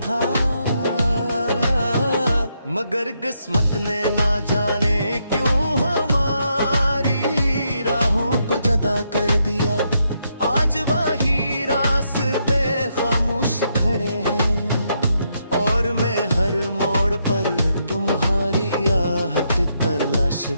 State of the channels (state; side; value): inverted; both; correlation -0.79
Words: था। मगर किस्मत ने ना जाने क्यों हमारी राहों को जुदा कर दिया। आज वही रास्ते खामोश खड़े हैं और मैं हर मोड़ पर तुम्हारी आहट तलाश